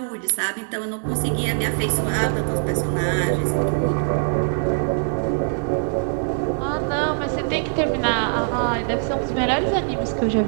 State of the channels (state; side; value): silent; left; 64 dB below the other